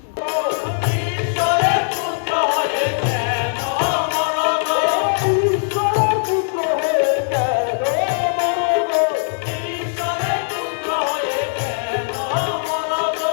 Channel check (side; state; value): right; silent; digital silence